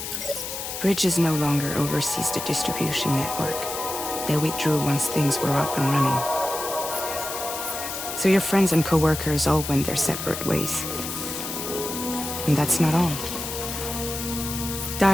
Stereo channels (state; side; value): noise; left; hiss, 6 dB below the sound